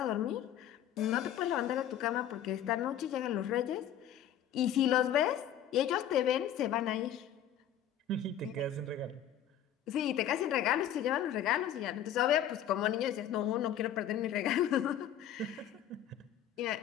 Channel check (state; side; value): quieter; right; 9.9 dB